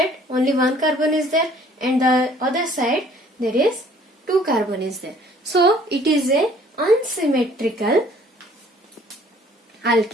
only one carbon is there, and the other side there is two carbon is there. So it is a unsymmetrical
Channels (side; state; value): both; normal; correlation 0.57